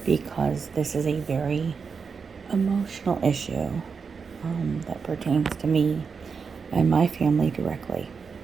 because this is a very emotional issue that pertains to me and my family directly.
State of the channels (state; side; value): quieter; left; 5.5 dB